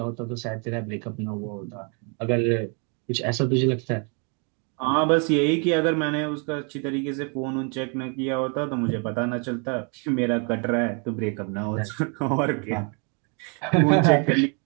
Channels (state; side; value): quieter; left; 36.3 dB